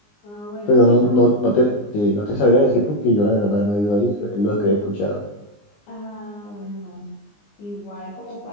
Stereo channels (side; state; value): right; late; 19 ms